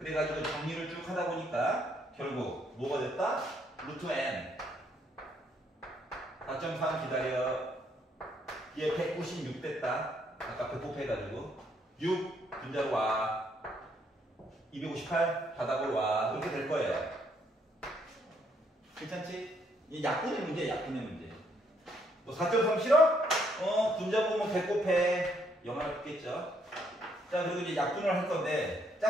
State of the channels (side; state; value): both; normal; correlation 0.71